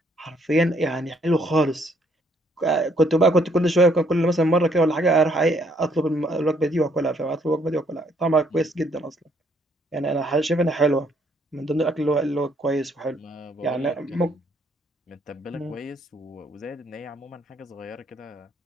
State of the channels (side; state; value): both; normal; correlation 0.68